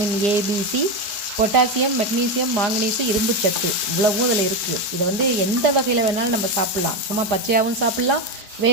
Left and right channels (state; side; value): late; left; 4.9 ms